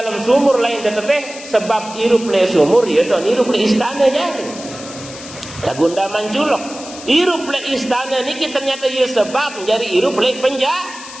sumur lain teteteh sebab hirup le sumur ya don hirup le istana jadi lagunda manculok. Hirup le istana niki ternyata ia sebab menjadi hirup le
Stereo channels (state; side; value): noise; left; hiss, 14 dB below the sound